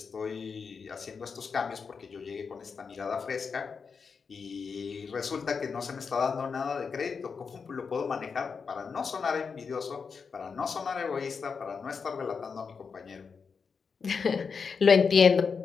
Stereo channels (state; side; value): quieter; right; 5.5 dB